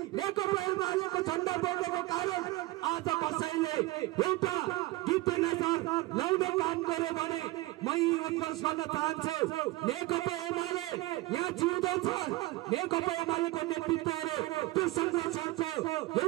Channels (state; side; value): quieter; left; 19.2 dB